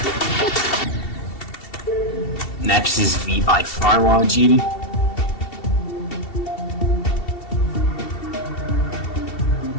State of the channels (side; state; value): right; late; 2.7 ms